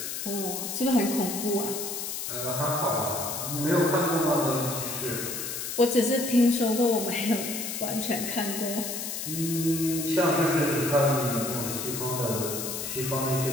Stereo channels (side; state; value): left; noise; hiss, 5 dB below the sound